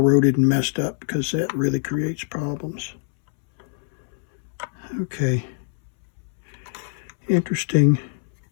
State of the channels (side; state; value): right; silent; 63 dB below the other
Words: and messed up, because that really creates problems. Okay. Interesting